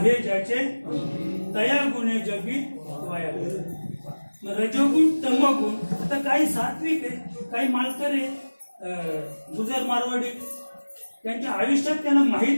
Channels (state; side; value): inverted; both; correlation -1.00